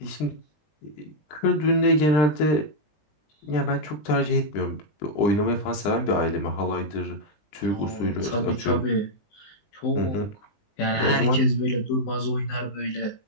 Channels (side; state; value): right; late; 19 ms